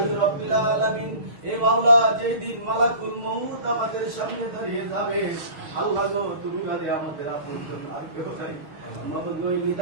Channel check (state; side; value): late; left; 6.5 ms